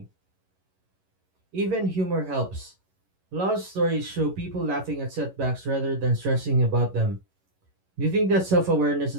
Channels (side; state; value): left; late; 11 ms